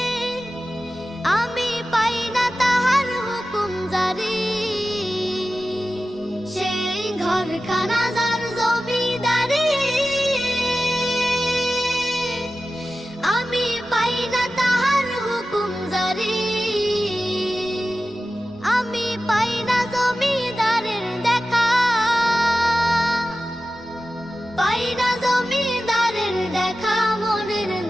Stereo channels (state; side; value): noise; right; rumble, 26 dB below the sound